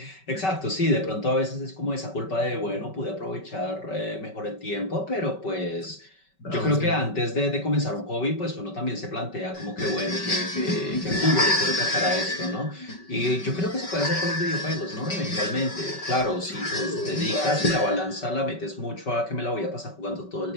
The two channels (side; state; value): right; late; 5.3 ms